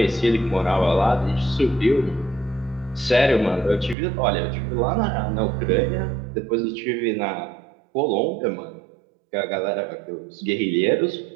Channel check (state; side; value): drops out; left; at 4.0 s